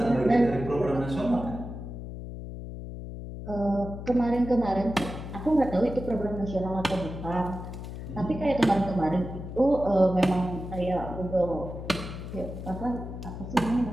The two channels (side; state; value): left; noise; hum, 9 dB below the sound